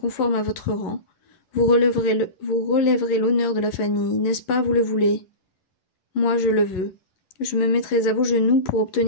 à votre rang, vous relèverez l'honneur de la famille, n'est-ce pas, vous le voulez? Moi, je le veux. Je me mettrai à vos genoux pour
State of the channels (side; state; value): right; late; 11 ms